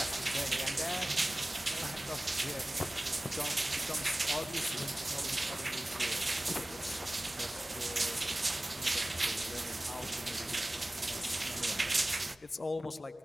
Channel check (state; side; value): normal; both; correlation 0.98